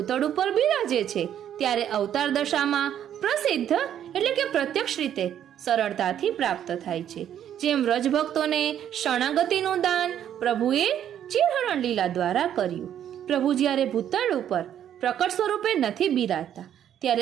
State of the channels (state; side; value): quieter; left; 10.1 dB